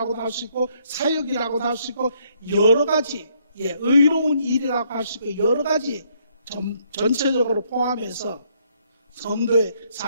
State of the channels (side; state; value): both; inverted; correlation -0.69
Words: 할 수 있고 사역이라고도 할 수 있고 여러 가지 의로운 일이라고 할 수 있고 여러 가지 전체적으로 포함해서 성도의